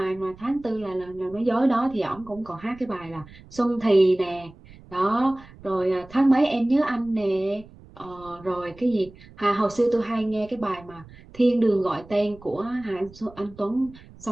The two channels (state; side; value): noise; right; rumble, 21 dB below the sound